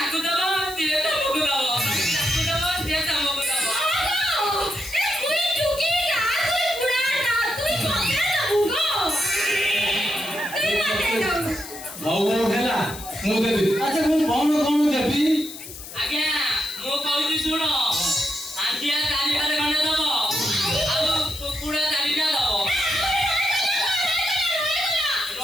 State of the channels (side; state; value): left; noise; hiss, 13 dB below the sound